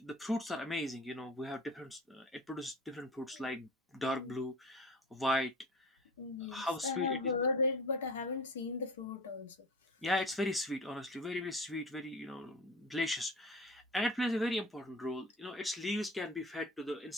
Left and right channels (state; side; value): normal; both; correlation 0.37